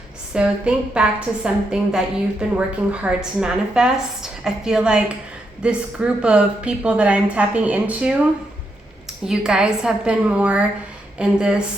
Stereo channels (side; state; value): both; normal; correlation 0.81